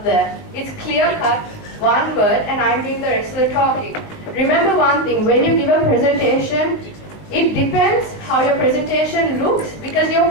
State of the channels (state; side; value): late; right; 19 ms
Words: there. It's clear cut, one word, and I'm doing the rest of the talking. Remember one thing, when you give a presentation, it depends how your presentation looks because your